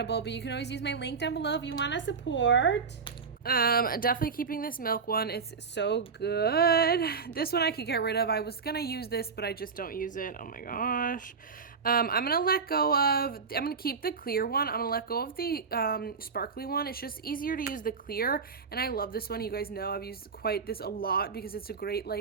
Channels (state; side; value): quieter; left; 5.4 dB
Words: but you can always use my link down below if you want to support. Definitely keeping this milk one. It's so good. This one I could get rid of. I was gonna use this, but I just don't use it. Oh my gosh. I'm gonna keep the clear one. I'm gonna let go of the sparkly one. It's just easier to use the clear, and I love this one. You guys know I've used this a lot because it's a great